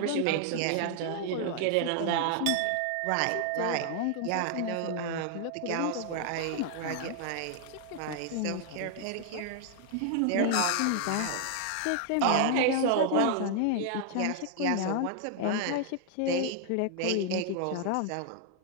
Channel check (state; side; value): different; both; correlation 0.00